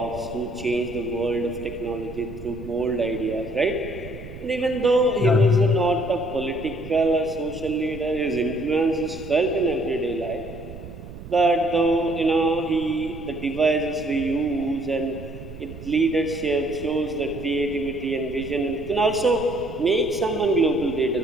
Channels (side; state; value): right; noise; rumble, 14 dB below the sound